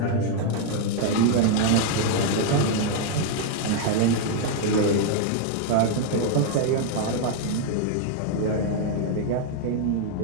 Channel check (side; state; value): both; different; correlation 0.00